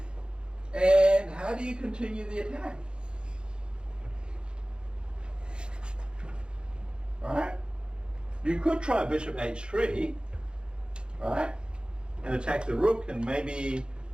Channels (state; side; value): late; left; 0.050 ms